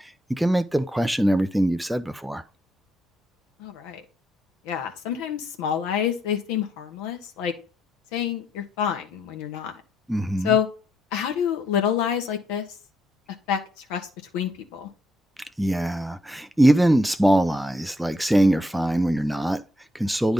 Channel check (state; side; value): normal; both; correlation 0.76